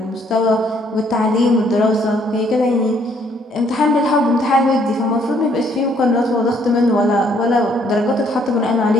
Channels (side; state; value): both; normal; correlation 0.66